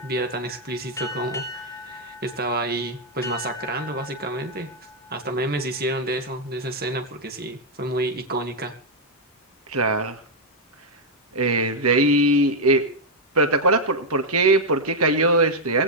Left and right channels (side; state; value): both; normal; correlation -0.02